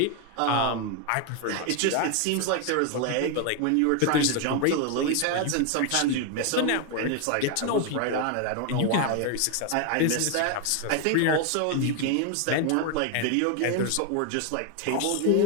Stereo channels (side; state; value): both; different; correlation 0.01